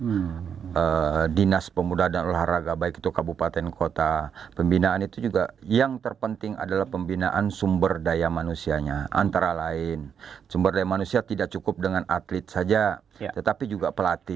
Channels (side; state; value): left; quieter; 7.6 dB